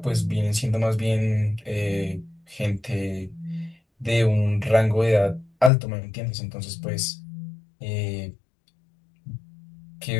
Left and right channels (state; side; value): drops out; right; at 5.7 s